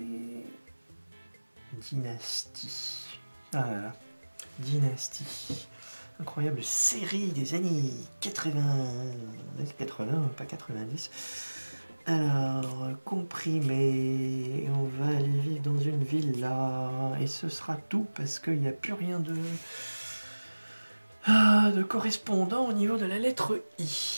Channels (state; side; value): inverted; both; correlation -1.00